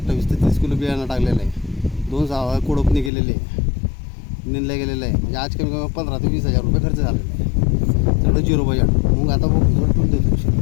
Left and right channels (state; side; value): drops out; right; at 3.1 s